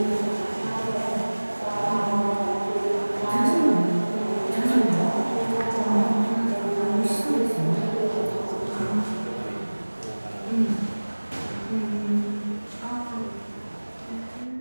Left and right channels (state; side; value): inverted; both; correlation -1.00